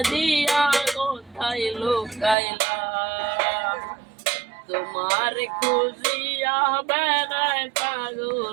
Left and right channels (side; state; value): left; drops out; at 2.4 s